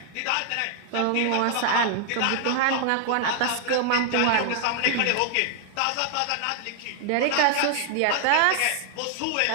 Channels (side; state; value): both; different; correlation 0.00